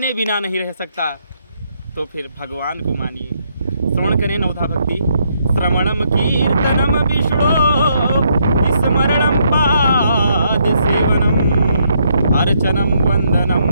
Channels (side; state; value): both; inverted; correlation -0.74